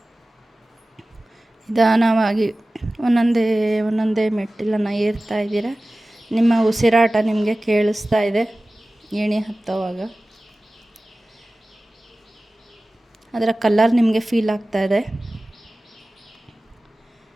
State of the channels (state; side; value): normal; both; correlation 0.97